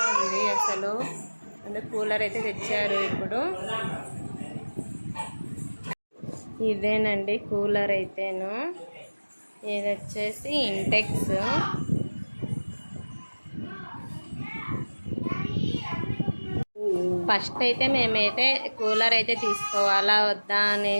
ఉంది అసలు. అందుకే కూలర్ అయితే తెచ్చారు. ఇప్పుడు ఇదేనండి కూలర్ అయితేను. ఇది వచ్చేసి ఇంటెక్స్. ఫస్ట్ అయితే మేమైతే కూలర్ అయితే తీసుకోవాలా వద్దా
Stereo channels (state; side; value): inverted; both; correlation -1.00